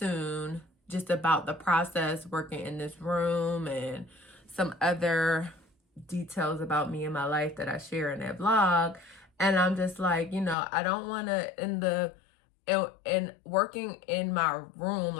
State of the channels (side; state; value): right; drops out; at 10.6 s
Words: just about the process working in this room and some other details about me and my life that I share in that vlog. And I'm just like, you know, I don't want to, in working in my room,